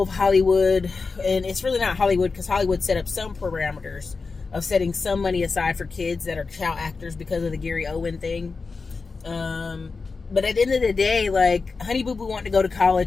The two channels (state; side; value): quieter; right; 4.4 dB